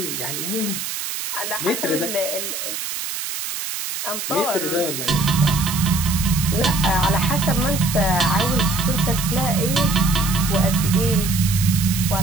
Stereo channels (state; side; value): noise; right; hiss, 5 dB below the sound